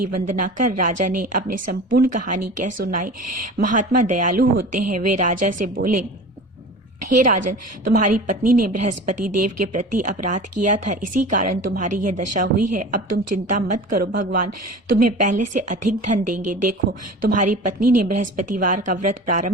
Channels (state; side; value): normal; both; correlation 0.37